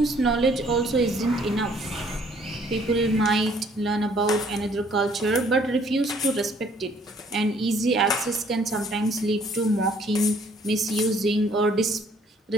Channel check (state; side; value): normal; both; correlation 0.61